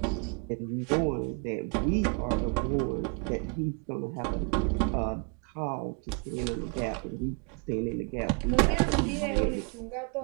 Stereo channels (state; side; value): quieter; left; 35.3 dB